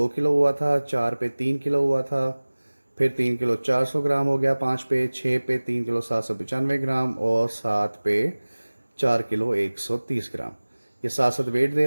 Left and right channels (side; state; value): both; inverted; correlation -1.00